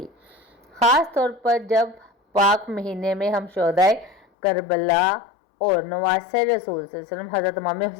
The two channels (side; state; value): right; drops out; at 4.2 s